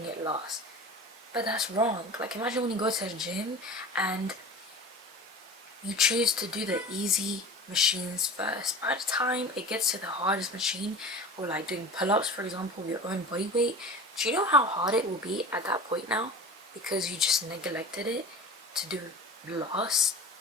it last. But that's wrong. Like, imagine when you go to a gym and you choose to do the easy machines first. By the time it gets to the hardest machine, or like doing pull-ups, for example, with your own body weight, do you know how hard it will be at that point now? Because you just neglected it to do last.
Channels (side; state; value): both; normal; correlation 0.36